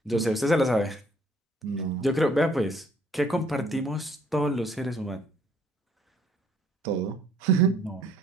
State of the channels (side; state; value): both; normal; correlation 0.62